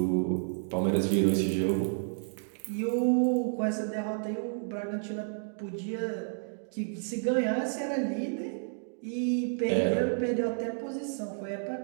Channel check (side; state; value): left; silent; digital silence